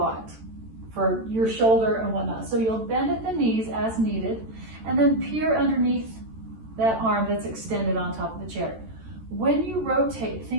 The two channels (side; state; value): left; late; 13 ms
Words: for your shoulder and whatnot, so you'll bend at the knees as needed, and then peer underneath that arm that's extended on top of the chair. When you rotate,